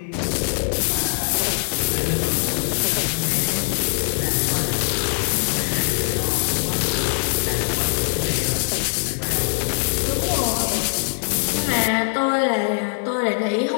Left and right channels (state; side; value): silent; right; digital silence